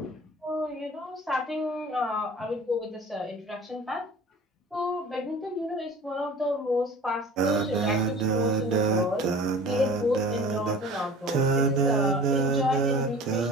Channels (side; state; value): both; normal; correlation 0.42